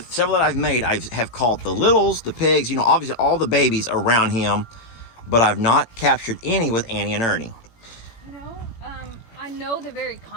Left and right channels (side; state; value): right; late; 18 ms